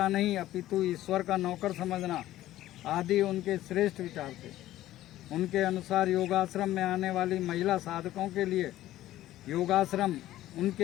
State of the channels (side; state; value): right; quieter; 14.4 dB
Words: नहीं अपितु ईश्वर का नौकर समझना आदि उनके श्रेष्ठ विचार थे। उनके अनुसार योगाश्रम में आने वाली महिला साधकों के लिए योगाश्रम